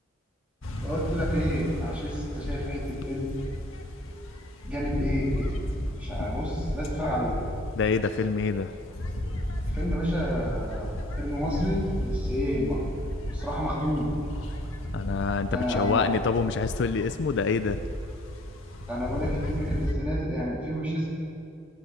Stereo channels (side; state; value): both; normal; correlation 0.58